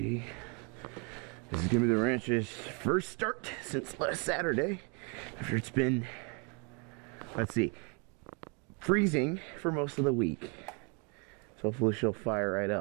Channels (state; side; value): quieter; left; 34.1 dB